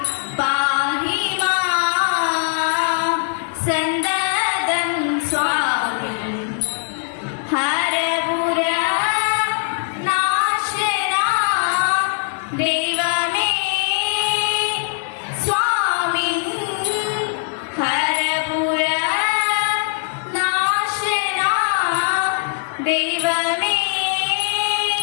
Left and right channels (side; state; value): right; silent; 65 dB below the other